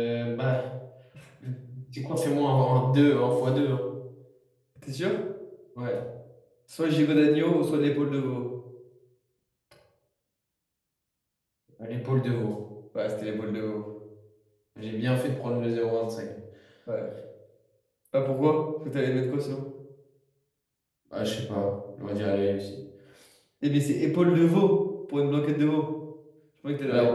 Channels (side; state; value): both; identical; correlation 1.00